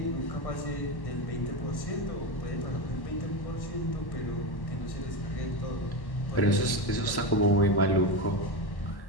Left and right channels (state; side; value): late; right; 1.1 ms